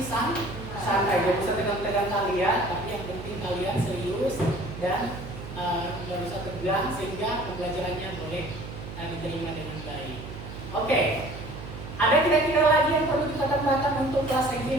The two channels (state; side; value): noise; right; hum, 11 dB below the sound